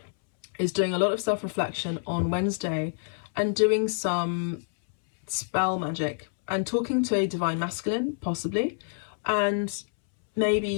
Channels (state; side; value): silent; right; 60 dB below the other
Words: is doing a lot of self-reflection on Wednesday and doing some spell magic and talking to a divine masculine, possibly, and